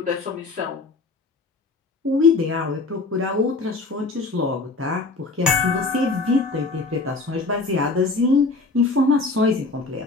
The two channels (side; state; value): right; quieter; 3.6 dB